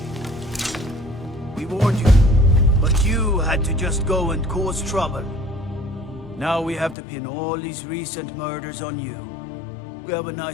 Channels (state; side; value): drops out; right; at 7.0 s